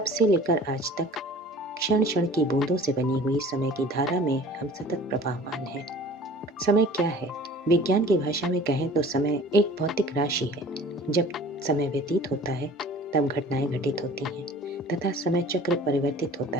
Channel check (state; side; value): normal; both; correlation 0.46